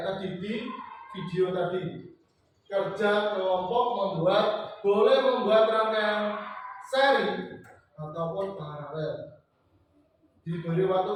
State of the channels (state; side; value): identical; both; correlation 1.00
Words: tadi di video tadi, kerja kelompok boleh membuat rangkaian seri ataupun paralel. Diberi waktu